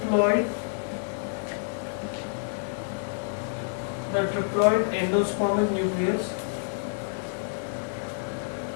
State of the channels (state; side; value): silent; right; digital silence